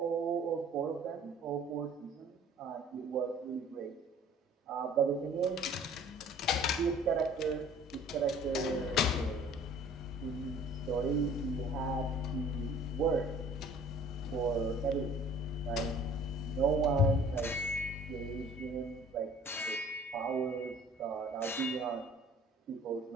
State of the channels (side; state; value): both; normal; correlation 0.50